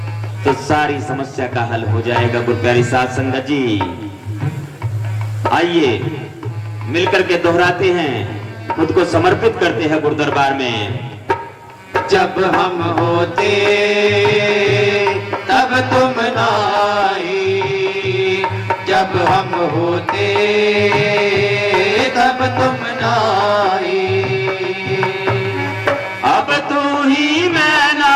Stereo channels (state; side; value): identical; both; correlation 1.00